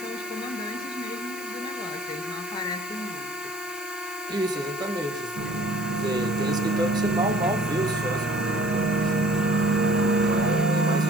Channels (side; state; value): right; noise; hiss, 17 dB below the sound